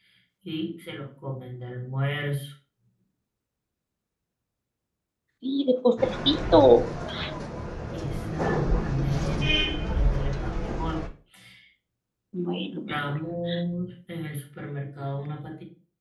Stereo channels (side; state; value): both; identical; correlation 1.00